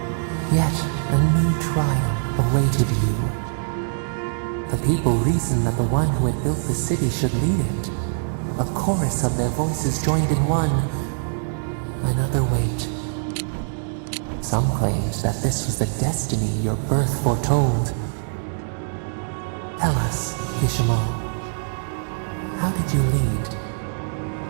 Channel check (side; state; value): left; silent; digital silence